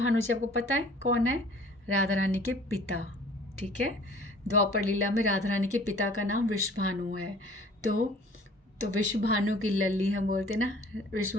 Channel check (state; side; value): normal; both; correlation 0.51